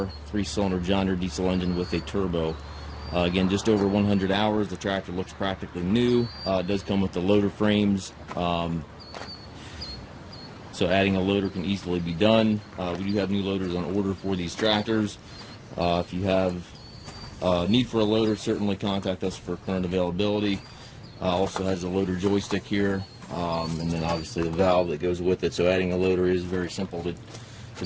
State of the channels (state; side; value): identical; both; correlation 1.00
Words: 3-cylinder John Deere diesel engine with a turbo. Again, just over 100 hours. The tractor looks practically new. It does come with the loader frames, so adding a loader can easily be done. We do have new loaders on order for these tractors. If you have need for a loader, certainly contact us for current availability. Also has a loader joystick here, and then obviously the valve that goes with it. So adding a loader is very simple to